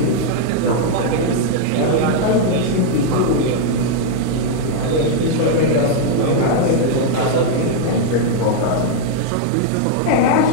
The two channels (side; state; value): both; different; correlation -0.01